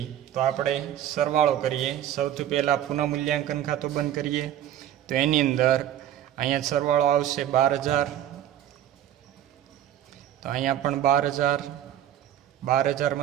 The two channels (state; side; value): quieter; left; 11.5 dB